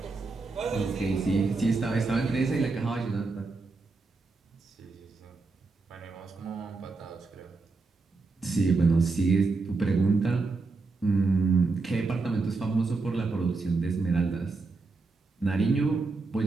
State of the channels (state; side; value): quieter; left; 3.9 dB